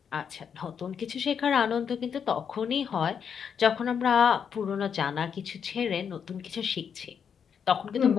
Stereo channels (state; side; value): quieter; right; 7.3 dB